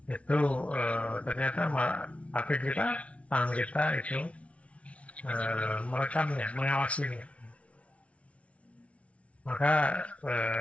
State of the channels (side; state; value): right; late; 0.063 ms